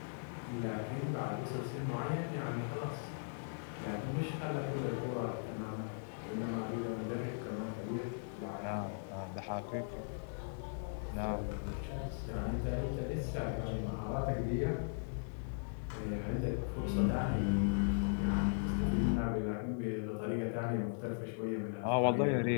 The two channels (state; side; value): silent; right; digital silence